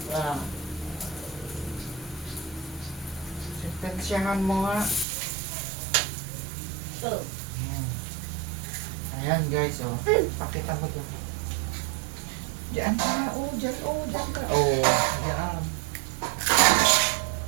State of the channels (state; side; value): drops out; left; at 5.1 s